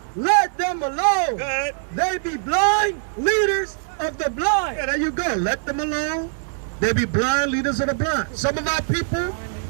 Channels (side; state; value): left; silent; digital silence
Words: Let them alone. Good. They be blind leaders of the blind. Yeah, there you go. Let them alone. They be blind leaders of the blind. Some of our people,